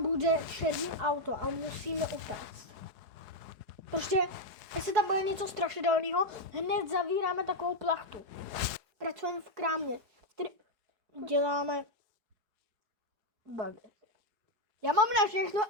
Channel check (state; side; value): late; left; 4.8 ms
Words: bude černý auto a musíme utéct. Prostě, jestli tam bude něco strašidelného, hned zavíráme takovou plachtu. Pracujeme v krámě. Děláme bagety. Já mám na všechno